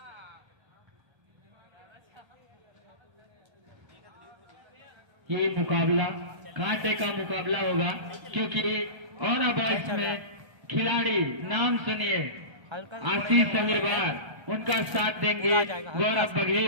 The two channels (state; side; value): late; left; 1.3 ms